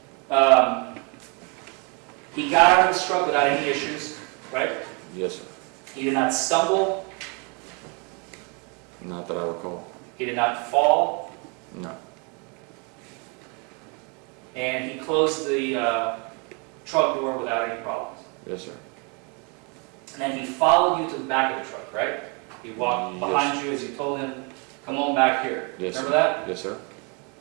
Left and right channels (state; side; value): quieter; left; 33.6 dB